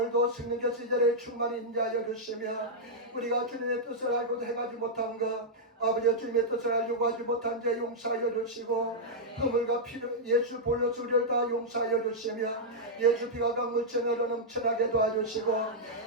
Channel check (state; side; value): normal; both; correlation -0.06